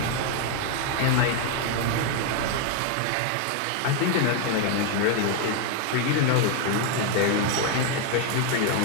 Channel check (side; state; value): both; different; correlation 0.01